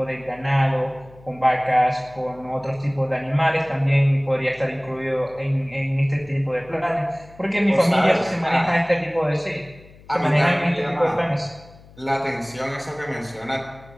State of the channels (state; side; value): noise; left; hum, 23 dB below the sound